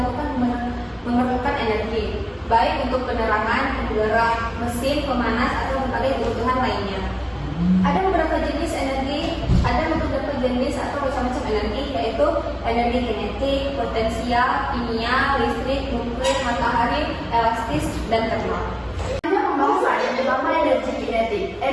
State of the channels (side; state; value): both; identical; correlation 1.00